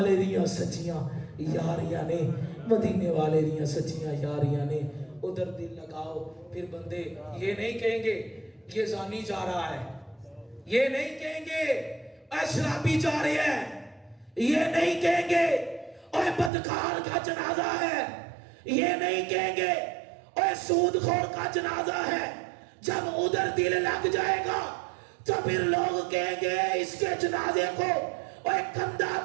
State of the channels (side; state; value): left; drops out; at 16.5 s